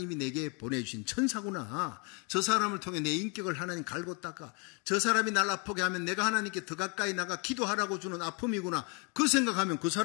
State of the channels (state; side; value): quieter; right; 32.7 dB